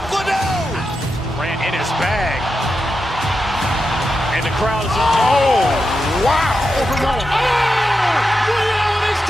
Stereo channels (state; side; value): normal; both; correlation 0.88